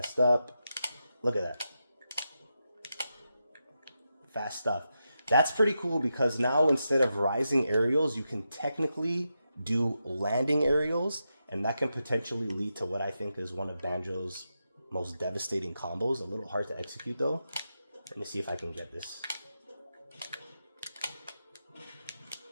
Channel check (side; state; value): both; inverted; correlation -0.87